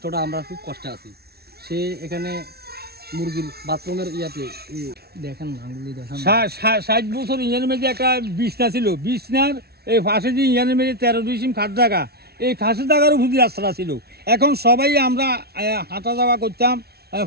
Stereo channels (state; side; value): late; left; 0.46 ms